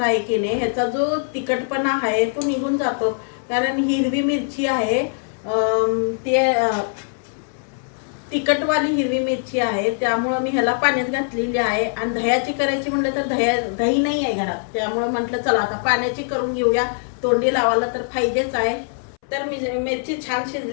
आहे की नाही, ह्याचा जो तिखटपणा आहे तो निघून जातो. कारण हिरवी मिरची आहे, ते तिखटवाली हिरवी मिरची आहे, त्यामुळं मी ह्याला पाण्यात घातलेली आहे. आणि दह्याची करायची म्हटलं तर दही नाही आहे घरात, त्यामुळं म्हटलं चला आता पाण्याची करून घेऊया. तोंडी लावायला तर पाहिजेच आहे. तर मी मिरची छान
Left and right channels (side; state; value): right; silent; 64 dB below the other